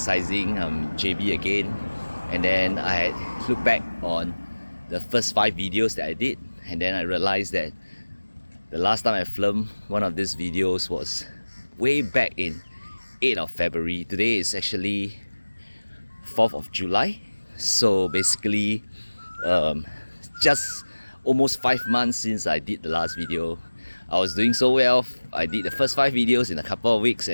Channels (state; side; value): inverted; both; correlation -1.00